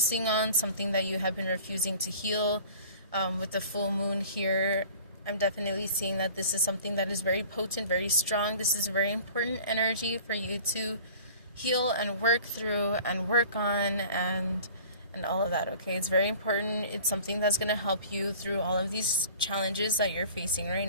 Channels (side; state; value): both; inverted; correlation -0.46